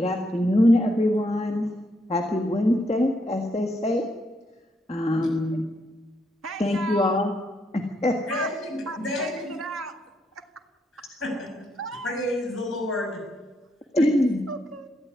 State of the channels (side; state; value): both; normal; correlation 0.77